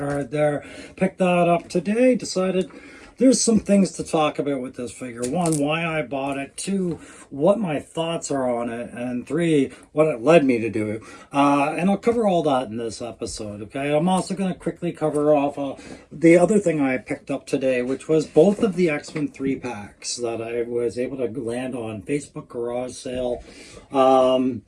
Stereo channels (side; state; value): both; identical; correlation 1.00